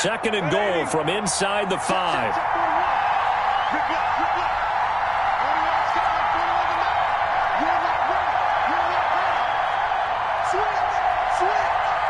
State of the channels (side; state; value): both; identical; correlation 1.00